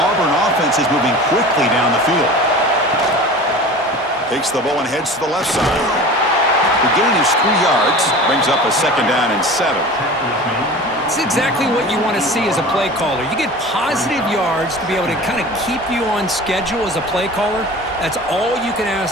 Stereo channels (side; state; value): both; normal; correlation 0.37